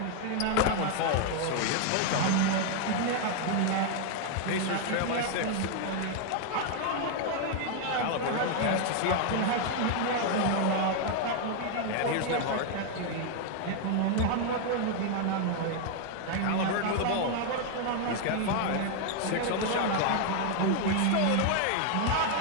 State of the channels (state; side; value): different; both; correlation 0.00